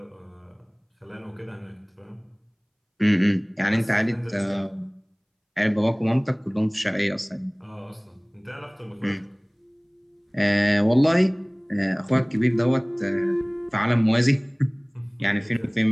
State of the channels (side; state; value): both; identical; correlation 1.00